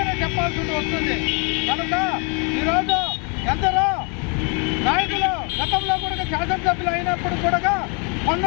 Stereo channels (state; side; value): quieter; right; 35.2 dB